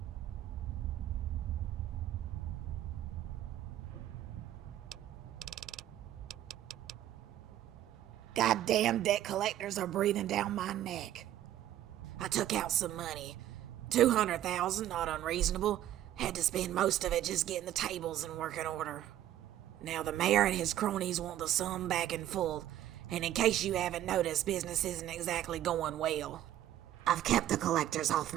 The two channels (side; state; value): left; quieter; 12.5 dB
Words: Goddamn debt collectors are breathing down my neck. I took out some money. 200,000, not unreasonable. Had to spend most of it just getting the tables in working order. Now the mayor and his cronies want the sum back in full, and in case you haven't noticed, business isn't exactly going well. I've kept the collectors off